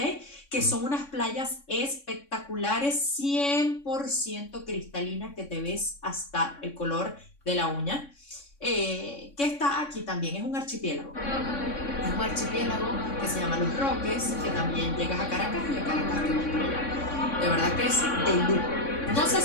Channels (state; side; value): late; right; 3.6 ms